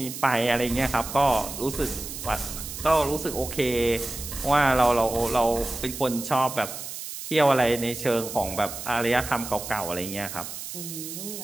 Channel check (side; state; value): right; noise; hiss, 9 dB below the sound